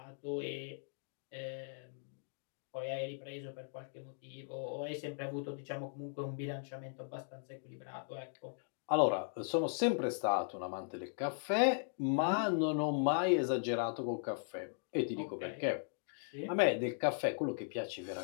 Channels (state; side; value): silent; right; digital silence